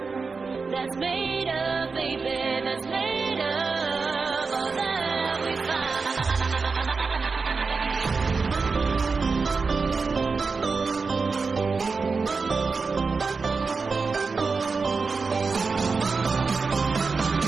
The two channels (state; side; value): quieter; left; 4.6 dB